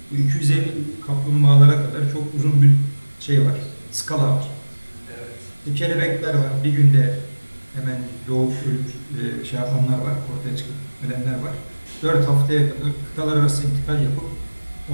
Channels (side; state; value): both; inverted; correlation -1.00